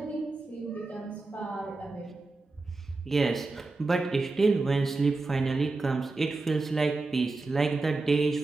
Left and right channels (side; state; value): left; quieter; 3.5 dB